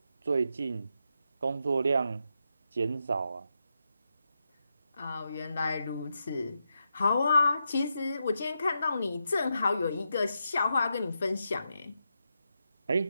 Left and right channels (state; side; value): inverted; both; correlation -0.85